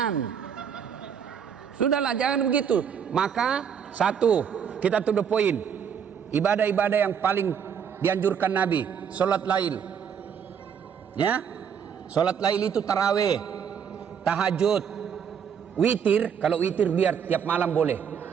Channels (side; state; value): left; quieter; 7.6 dB